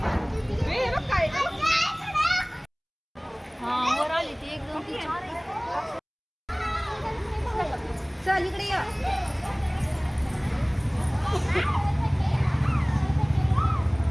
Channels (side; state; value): both; identical; correlation 1.00